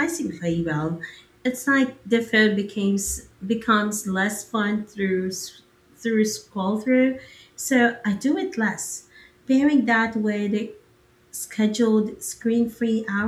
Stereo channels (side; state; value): both; identical; correlation 1.00